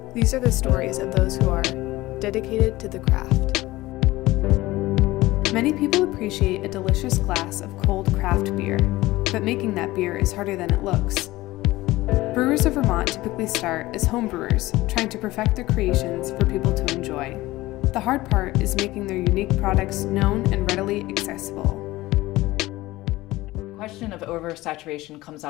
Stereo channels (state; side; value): quieter; right; 18.4 dB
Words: These are the stories of those who are dedicated to the craft. Many people appreciate a delicious glass of cold craft beer, but making that beer is harder than it looks. Brewers of Vermont typically start as home brewers, trying to perfect their creations for people to enjoy. The hard part is making their unique products known and readily accessible. The question of oversaturation comes